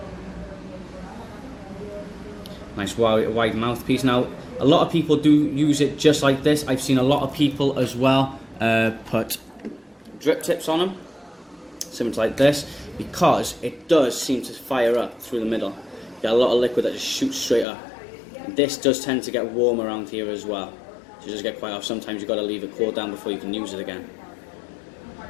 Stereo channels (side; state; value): right; drops out; at 17.7 s